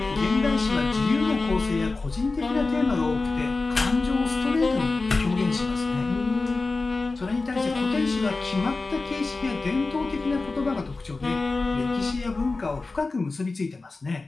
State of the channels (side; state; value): right; quieter; 3.6 dB